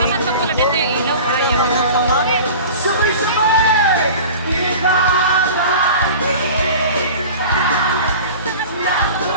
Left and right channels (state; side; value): inverted; both; correlation -0.38